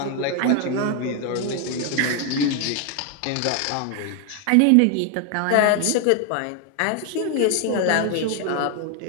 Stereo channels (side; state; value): both; different; correlation 0.01